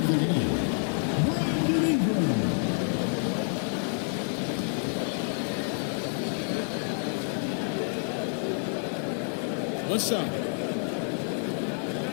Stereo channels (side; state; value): right; silent; 59 dB below the other